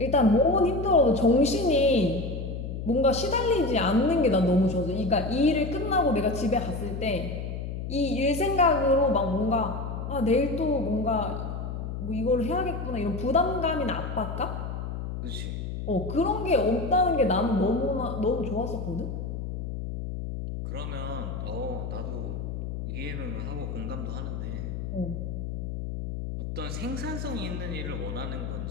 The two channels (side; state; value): left; noise; hum, 5 dB below the sound